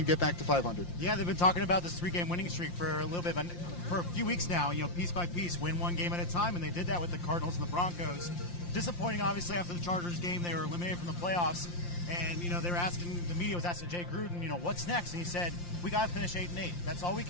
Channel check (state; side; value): late; right; 5.7 ms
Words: get back to 500. Yeah, they've been talking about this 3-game winning streak for a little bit, for a few weeks now, piece by piece, win one game at a time, and they did that with the Cardinals and the Broncos. Disappointing, obviously, after the Chargers game. They were eliminated from the playoffs. And, they were asking, the media was asking Jay Gruden, what's next? And he said, we got to finish 8-8. That's all we